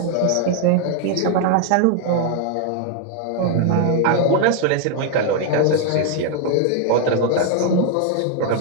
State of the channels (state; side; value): different; both; correlation 0.00